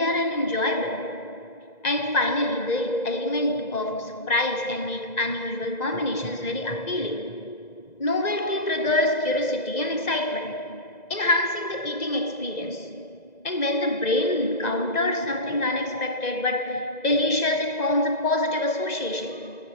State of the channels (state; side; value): late; right; 2.0 ms